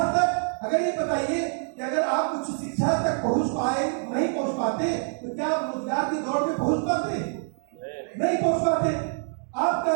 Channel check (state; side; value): silent; left; 60 dB below the other